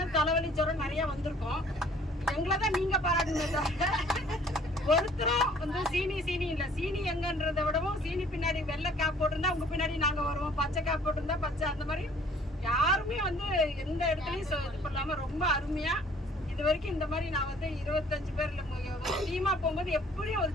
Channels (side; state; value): both; normal; correlation 0.56